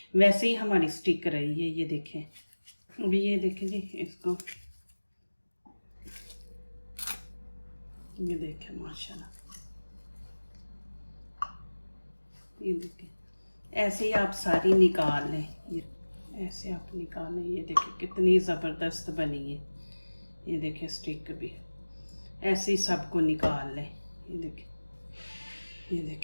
वैसे ही हमारी स्टिक रही है। ये देखें, अभी ये देखें जी इसको, ये देखें माशाल्लाह, ये देखें ऐसे ही आप सारी निकाल लें। ये ऐसे आप निकाल लें। ये देखें कितनी ज़बरदस्त बनी है। ये देखें स्टिक भी ऐसे ही सबको निकाल लें। ये देखें, ये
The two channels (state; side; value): inverted; both; correlation -1.00